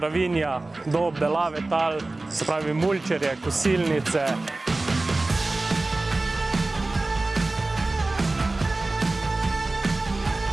do obdelave tal, se pravi mulčerje, kosilnice.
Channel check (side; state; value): left; quieter; 3.1 dB